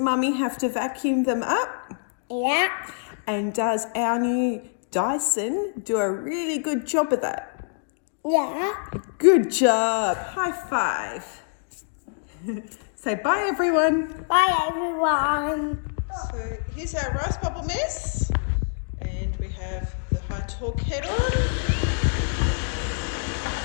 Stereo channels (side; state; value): right; silent; digital silence